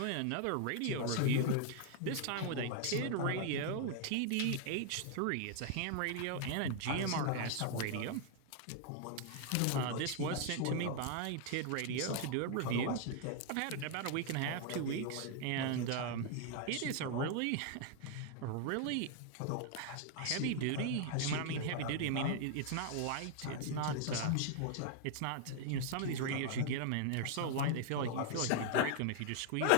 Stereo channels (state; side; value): different; both; correlation 0.00